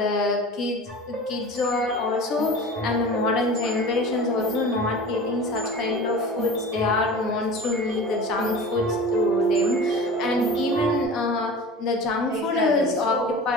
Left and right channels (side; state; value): both; normal; correlation 0.36